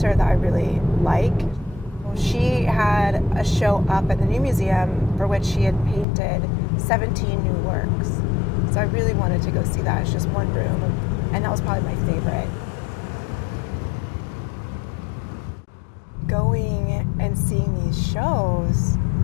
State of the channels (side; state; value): right; drops out; at 6.1 s